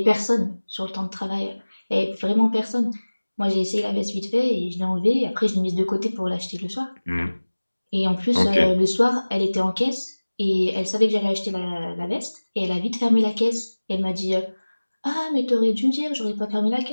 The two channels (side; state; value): both; inverted; correlation -1.00